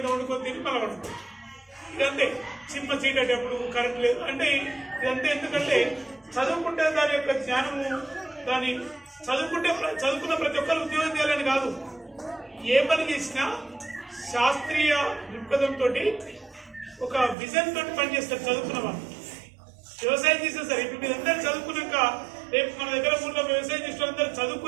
వండుకొని తిని మళ్ళీ వండుకో. ఇదంతే చిమ్మ చీకటప్పుడు కరెంట్ లేదు అంటే ఇదంతా. ఎందుకంటే చదువుకుంటే దాని యొక్క జ్ఞానము దాని చదువుకున్న ప్రతి ఒక్కరు ఉద్యోగం చేయాలని కాదు. ఏ పని చేసినా శాస్త్రీయ దృక్పథంతో ఒక విజన్ తోటి పనిచేస్తారు చదువుకున్న వాళ్ళు. వ్యవసాయం చేస్తారు సార్. ఇప్పుడు మీరందరూ చదువుకున్నాక రేపు మన దగ్గర ఊళ్ళో వ్యవసాయం చేసిన అందరూ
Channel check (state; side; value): drops out; left; at 17.4 s